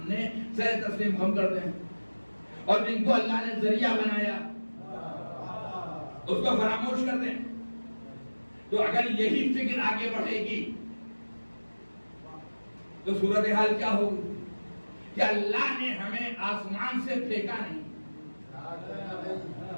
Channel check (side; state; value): both; inverted; correlation -1.00